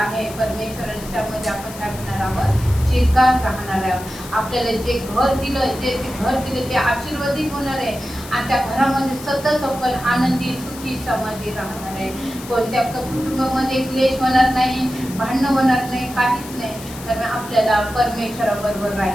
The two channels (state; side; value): noise; left; hiss, 15 dB below the sound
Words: परमेश्वराने, त्यामध्ये आपण काय करणार आहोत, चिरकाल राहणार आहे. आपल्याला जे घर दिलं ते आशीर्वादित होणार आहे आणि त्या घरामध्ये सतत आपण आनंदी, सुखी, समाधी राहणार आहे. कोणत्या कुटुंबामध्ये क्लेश होणार नाही, भांडणं होणार नाही, काहीच नाही. कारण आपल्याला परमेश्वराबरोबर